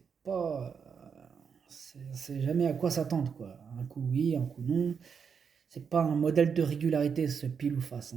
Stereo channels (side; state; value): left; quieter; 6.5 dB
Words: pas... c'est jamais à quoi s'attendre, quoi. Un coup oui, un coup non. C'est pas un modèle de régularité, ce Pile ou Face,